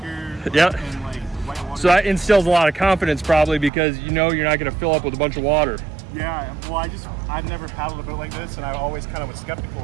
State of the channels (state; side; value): drops out; left; at 3.7 s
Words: Yeah. And, like, white water. So that instills a lot of confidence, probably, because you know you're not going to fill up with a bunch of water. Yeah. Well, I've never paddled a boat like this, and I always kind of was